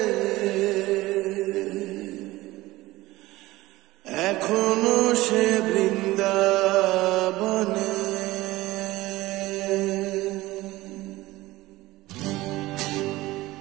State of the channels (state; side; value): quieter; left; 18.4 dB